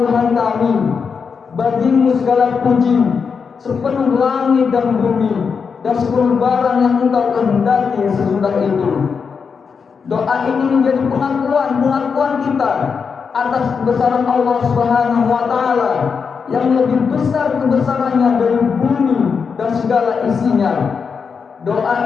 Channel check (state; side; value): quieter; right; 5.8 dB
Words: kami, bagimu segala puji sepenuh langit dan bumi dan seluruh barang yang Engkau kehendaki sesudah itu. Doa ini menjadi pengakuan kita atas kebesaran Allah Subhanahu wa Ta'ala yang lebih besar kebesarannya dari bumi dan segala isinya.